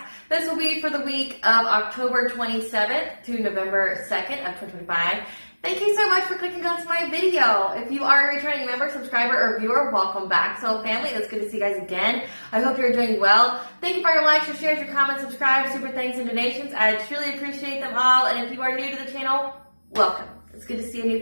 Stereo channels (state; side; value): inverted; both; correlation -1.00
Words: This will be for the week of October 27th to November 2nd of 2025. Thank you so much for clicking onto my video. If you are a returning member, subscriber, or viewer, welcome back. So family, it's good to see you guys again. I hope you're doing well. Thank you for your likes, your shares, your comments, subscribes, super thanks, and donations. I truly appreciate them all. And if you are new to the channel, welcome. It's good to see a